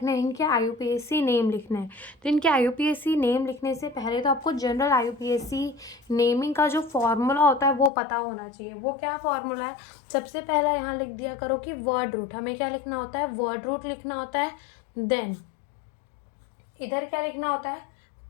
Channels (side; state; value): right; drops out; at 7.9 s